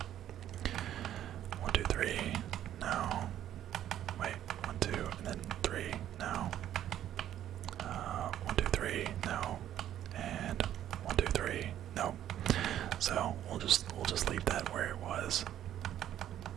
1, 2, 3, no. Wait, 1, 2, and then 3, no. we'll just leave that where it was,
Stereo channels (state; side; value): quieter; left; 11.4 dB